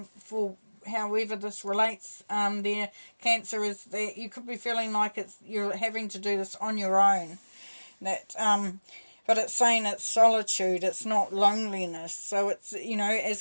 for however this relates, there, Cancer, is that you could be feeling like you're having to do this on your own. But it's saying it's solitude, it's not loneliness. So it's,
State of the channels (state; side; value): inverted; both; correlation -1.00